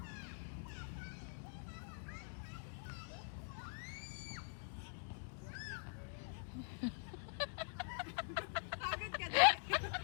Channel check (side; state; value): right; silent; digital silence